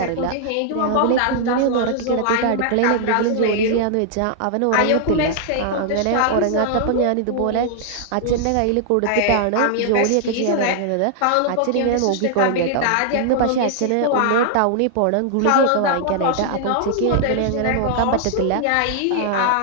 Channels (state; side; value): different; both; correlation -0.01